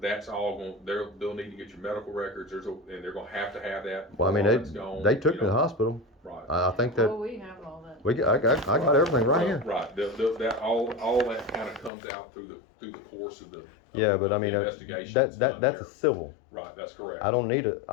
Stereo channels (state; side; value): drops out; right; at 11.9 s